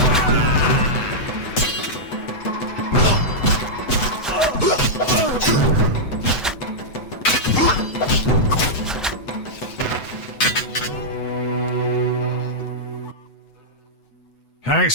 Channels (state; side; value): late; right; 8.0 ms